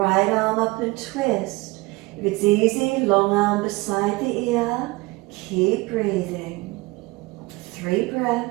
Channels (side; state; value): left; quieter; 22.7 dB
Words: arm up and twist. If it's easy, long arm beside the ear. Keep breathing. 3 breaths.